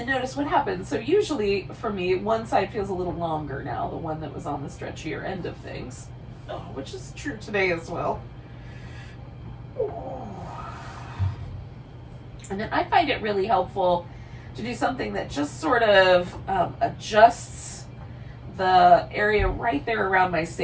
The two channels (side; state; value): both; identical; correlation 1.00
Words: notice what happens. So usually for me, one side feels a little longer now, the one that was on the stretchier end of things, which is true today as well. Oh. And then I find it really helpful to do something that just sort of adjusts the area right there around my